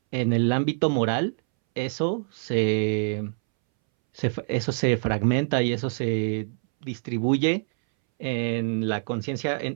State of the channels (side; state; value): left; silent; 61 dB below the other